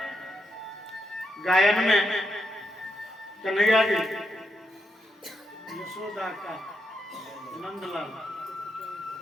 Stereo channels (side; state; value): both; normal; correlation 0.82